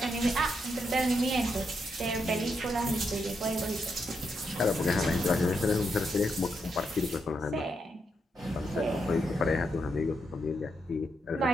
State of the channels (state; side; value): normal; both; correlation 0.81